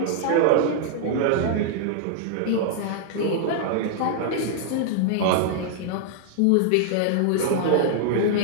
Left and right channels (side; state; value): both; different; correlation -0.01